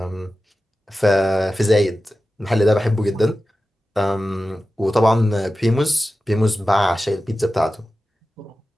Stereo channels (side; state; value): both; normal; correlation 0.94